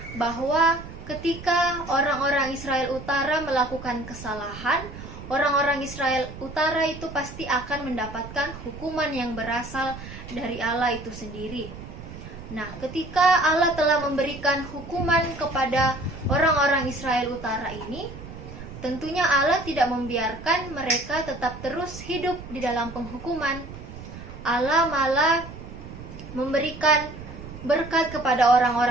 bahwa ketika orang-orang Israel Utara melakukan kesalahan, orang-orang Israel Utara itu pasti akan mendapatkan hukuman yang berasal dari Allah itu sendiri. Nah, ketika Allah telah memberikan hukuman kepada orang-orang Israel Utara ini, tentunya Allah tidak membiarkan mereka tetap terus hidup di dalam penghukuman. Allah malah memberikan berkat kepada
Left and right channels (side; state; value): right; noise; rumble, 13 dB below the sound